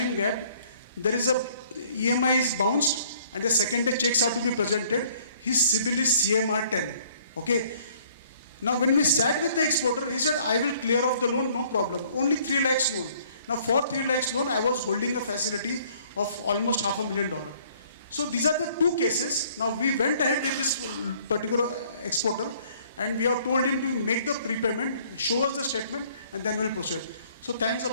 gap, there is a EMI is bounced and the second day checks are to be presented. His CIBIL is CMR 10, okay. Now, when we sat with the exporter, he said, I will clear off the loan, no problem. Only 3 lakhs loan. Now, for 3 lakhs loan, I was holding a facility of almost $500,000. So, these are the 2 cases. Now, we went ahead with this particular exporter and we have told him to make the prepayment, show us the statement, and then we'll proceed. So, thanks a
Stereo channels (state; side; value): inverted; both; correlation -0.59